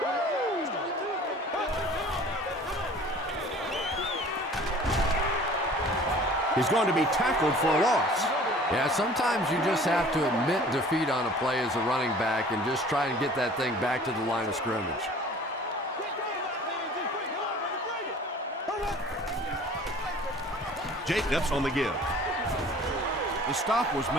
He's going to be tackled for a loss. Yeah, sometimes you just have to admit defeat on a play as a running back and just try and get that thing back to the line of scrimmage. Jacobs on the give. The stop was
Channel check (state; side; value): normal; both; correlation 0.47